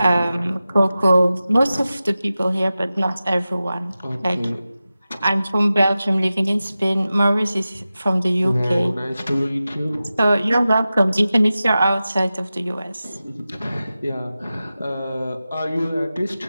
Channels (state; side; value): inverted; both; correlation -0.94